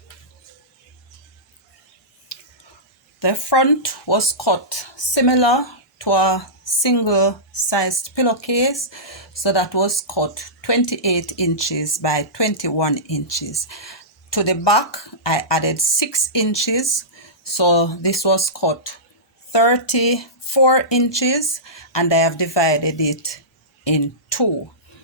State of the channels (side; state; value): both; normal; correlation -0.18